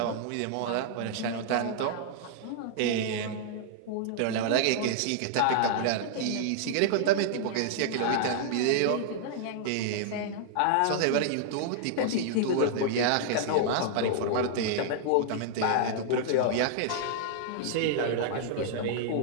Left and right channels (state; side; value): different; both; correlation -0.01